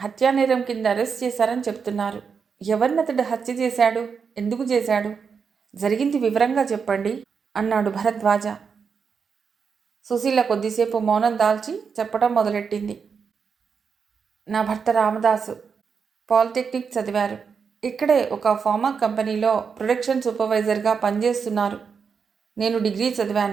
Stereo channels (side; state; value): left; quieter; 6.0 dB